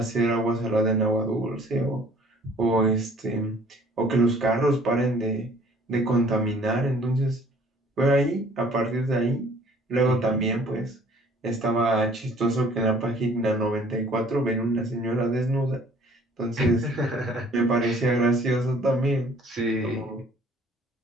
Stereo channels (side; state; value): both; normal; correlation 0.55